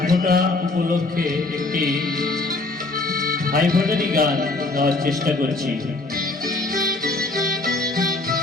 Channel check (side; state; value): right; quieter; 3.1 dB